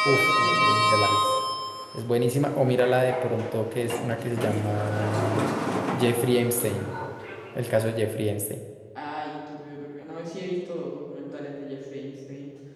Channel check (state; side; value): identical; both; correlation 1.00